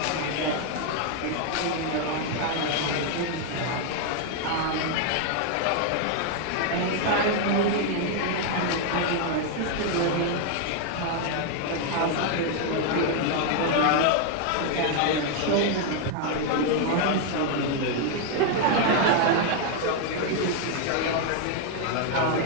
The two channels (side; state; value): both; different; correlation 0.00